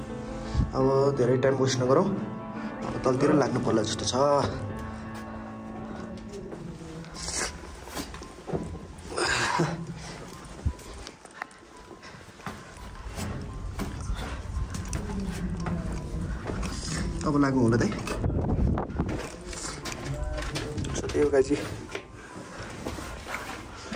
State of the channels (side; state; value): both; identical; correlation 1.00